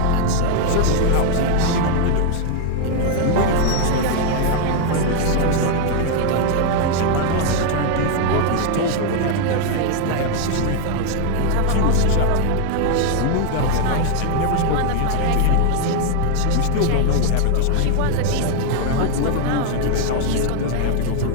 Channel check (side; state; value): both; different; correlation 0.00